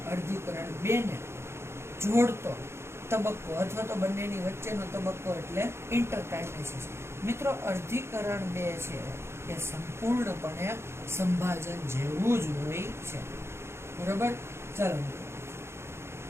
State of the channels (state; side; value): late; left; 0.12 ms